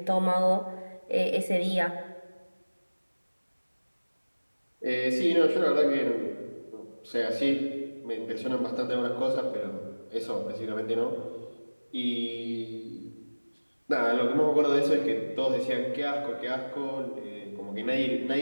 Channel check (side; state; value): both; inverted; correlation -1.00